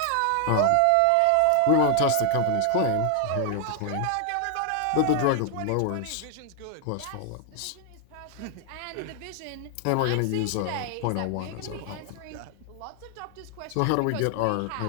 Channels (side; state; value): both; different; correlation 0.00